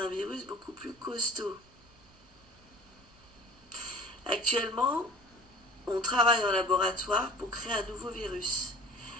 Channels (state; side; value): normal; both; correlation 0.44